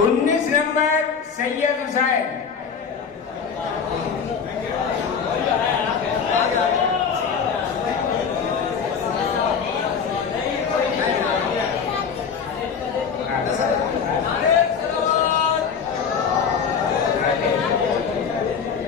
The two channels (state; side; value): quieter; right; 6.4 dB